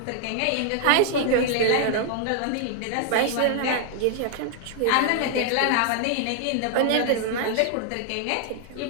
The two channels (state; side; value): different; both; correlation 0.00